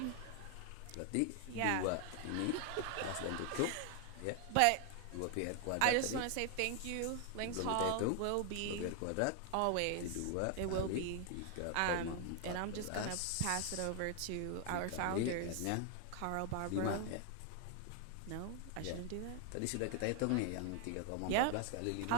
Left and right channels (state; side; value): different; both; correlation 0.00